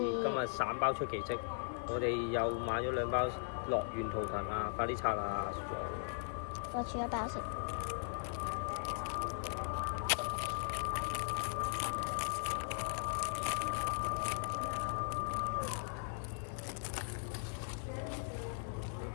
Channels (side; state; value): right; silent; 52 dB below the other